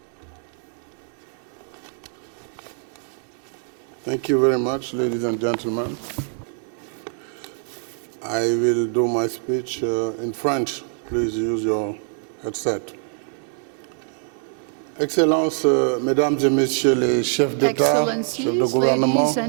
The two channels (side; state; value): left; silent; digital silence